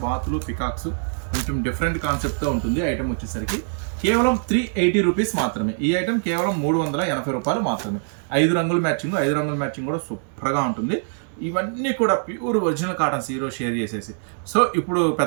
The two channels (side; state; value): left; silent; 63 dB below the other